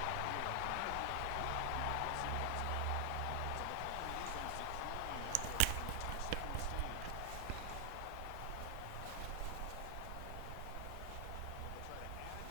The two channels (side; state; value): both; different; correlation 0.00